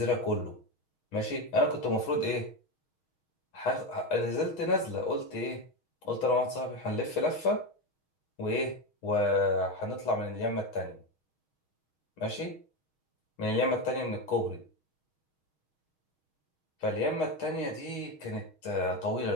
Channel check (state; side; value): late; right; 6.3 ms